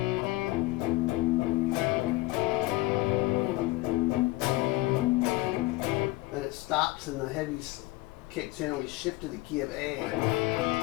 Then it stops and the heavy kicks in and we shift to the key of A.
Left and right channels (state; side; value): quieter; right; 19.9 dB